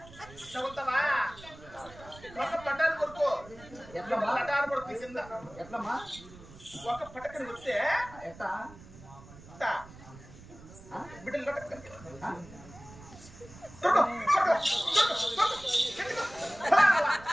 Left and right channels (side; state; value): right; noise; rumble, 19 dB below the sound